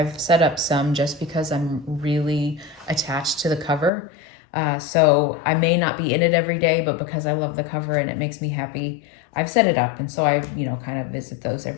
set up some just because I'm really attached to the cover. So I may not be in it every day, but because I love the cover and it makes me happy, I've set it up. And so I, kind of visit those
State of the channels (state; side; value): drops out; right; at 3.9 s